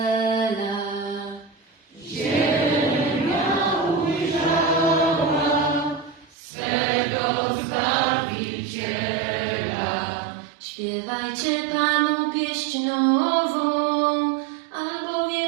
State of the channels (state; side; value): drops out; left; at 6.4 s